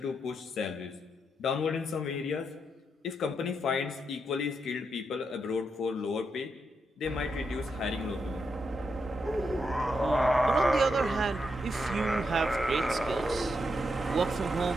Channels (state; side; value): normal; both; correlation 0.82